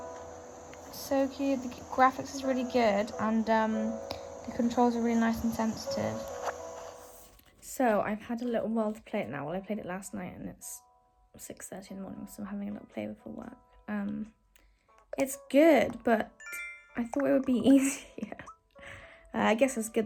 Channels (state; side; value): identical; both; correlation 1.00